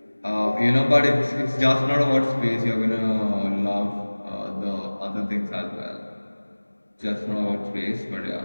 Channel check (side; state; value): both; inverted; correlation -1.00